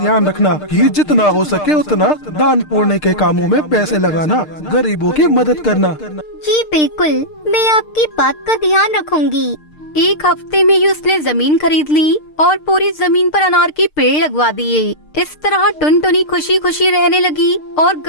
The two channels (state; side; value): late; right; 6.6 ms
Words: रखना कि जितना हो सके उतना दान पुण्य के कामों में पैसे लगाना, गरीबों की मदद करना। जी बिल्कुल, मैं आपकी बात का ध्यान रखूंगी। एक हफ्ते में ही उसने जमीन खरीद ली और पूरी जमीन पर अनार के पेड़ लगवा दिए। इस तरह टुनटुनी खुशी खुशी रहने लगी और